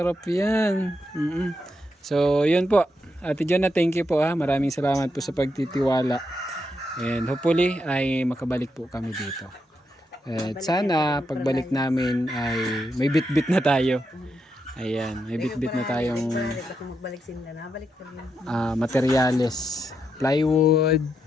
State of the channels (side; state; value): both; normal; correlation 0.83